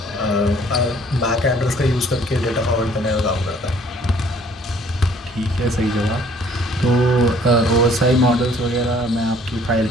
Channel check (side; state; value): both; normal; correlation 0.58